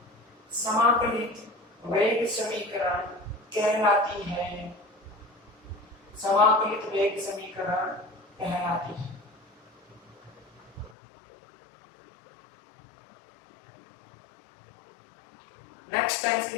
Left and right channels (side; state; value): right; drops out; at 11.0 s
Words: समाकलित वेग समीकरण कहलाती है। समाकलित वेग समीकरण कहलाती है। नेक्स्ट टाइम से